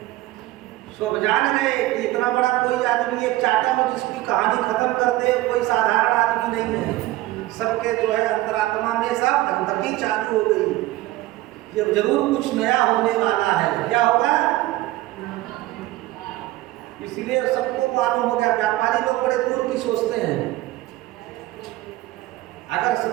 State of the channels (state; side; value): quieter; left; 17.3 dB